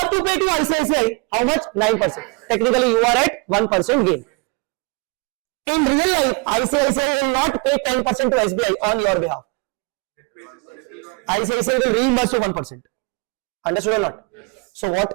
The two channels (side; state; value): left; quieter; 31.4 dB